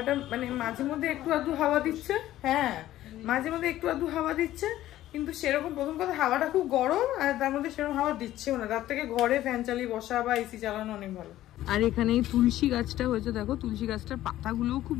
মানে মাঝে মধ্যে একটু আধটু হাওয়া দিচ্ছে, হ্যাঁ মাঝে মধ্যে একটু আধটু হাওয়া দিচ্ছে, কিন্তু সেরকম প্রথম কথা হাওয়াটা খুব গরম, আর তার মধ্যে সেরকম হাওয়া দিচ্ছেও না। তার থেকে ঘরে ফ্যান চালিয়ে বসা বা এসি চালানো অনেক ভালো। আর এখানে এই তুলসী গাছটা হয়েছে, দেখো তুলসী গাছটার পাতাগুলোও খুব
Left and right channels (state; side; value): quieter; right; 14.1 dB